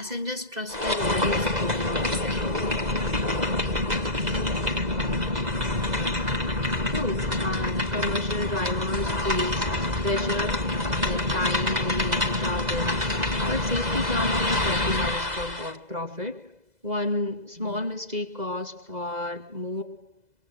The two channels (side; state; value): left; late; 2.0 ms